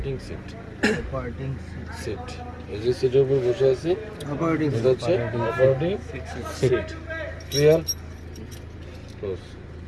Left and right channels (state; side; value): identical; both; correlation 1.00